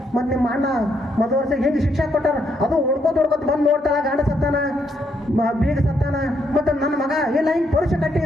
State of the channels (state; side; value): normal; both; correlation 0.75